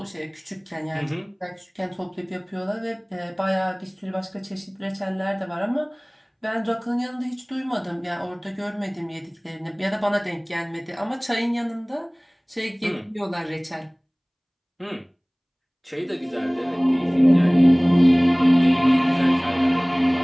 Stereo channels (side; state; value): both; identical; correlation 1.00